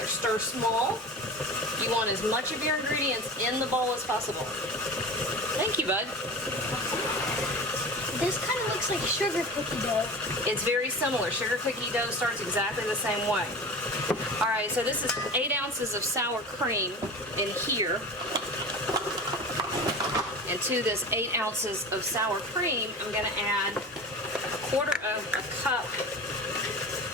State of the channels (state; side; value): normal; both; correlation 0.33